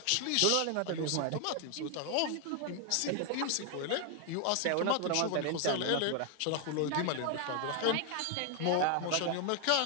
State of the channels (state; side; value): different; both; correlation 0.00